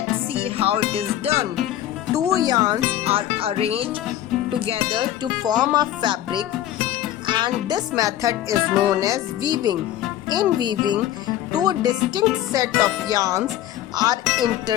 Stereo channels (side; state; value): right; quieter; 12.6 dB